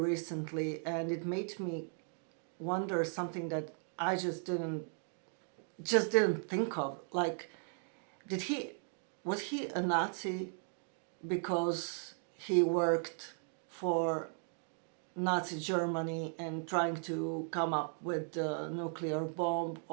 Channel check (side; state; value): left; silent; 53 dB below the other